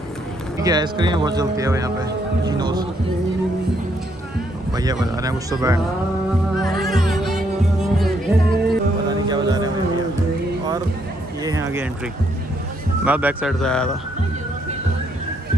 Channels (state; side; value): normal; both; correlation 0.73